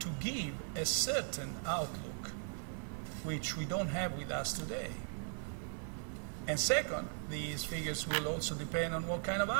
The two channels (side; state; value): left; silent; 52 dB below the other